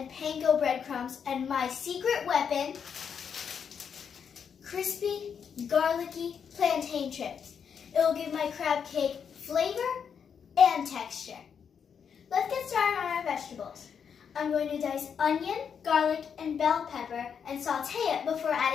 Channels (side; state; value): right; quieter; 7.2 dB